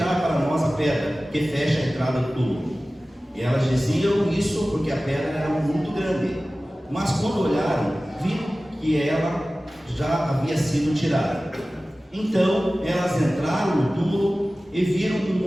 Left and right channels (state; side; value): normal; both; correlation 0.97